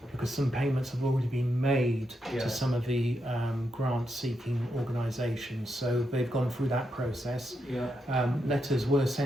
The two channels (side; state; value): both; normal; correlation 0.83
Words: because some payments have already been made to some of the grant-seeking organisations. So they've gone through that process. Letters were